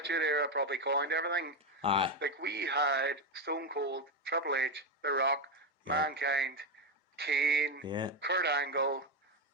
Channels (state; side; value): normal; both; correlation 0.09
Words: Era probably coined everything. Aye. Like, we had Stone Cold, Triple H, The Rock, Mankind, Kane, Kurt Angle,